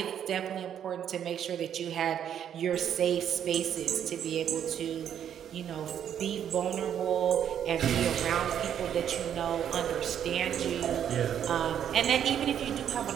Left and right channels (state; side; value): quieter; left; 9.4 dB